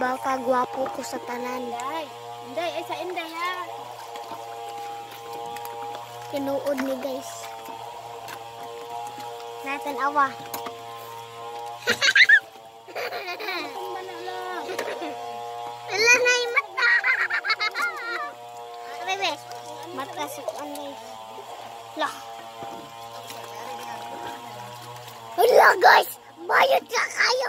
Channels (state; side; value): identical; both; correlation 1.00